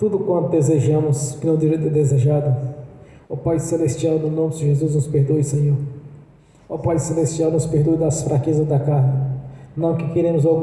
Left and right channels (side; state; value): both; identical; correlation 1.00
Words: quanto desejamos, que não deveria ter desejado. Ó Pai Celestial, no nome de Jesus, nos perdoe, Senhor. Ó Pai Celestial, nos perdoe das fraquezas da carne, não que queremos